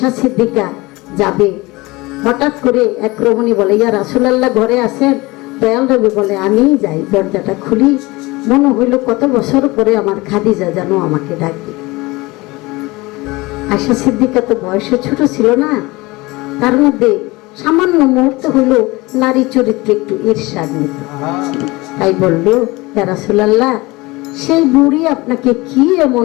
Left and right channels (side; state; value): right; quieter; 22.3 dB